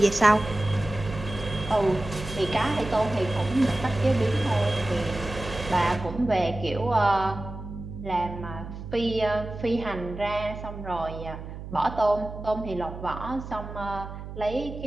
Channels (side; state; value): right; noise; hum, 10 dB below the sound